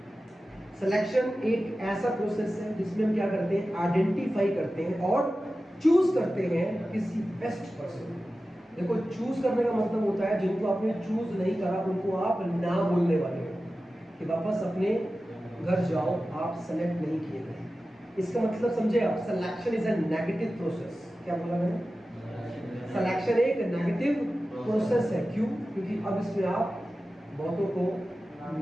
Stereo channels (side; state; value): both; normal; correlation 0.94